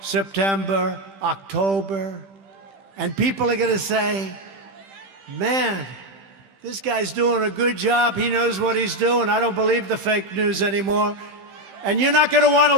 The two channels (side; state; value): left; late; 15 ms